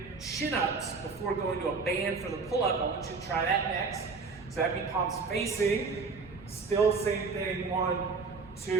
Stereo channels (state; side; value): quieter; left; 4.6 dB